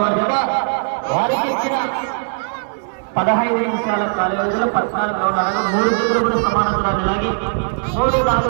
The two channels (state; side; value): silent; left; digital silence